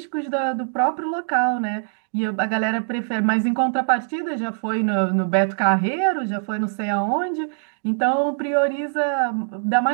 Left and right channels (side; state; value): left; silent; digital silence